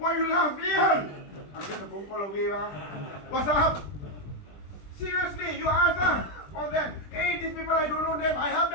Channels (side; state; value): right; late; 20 ms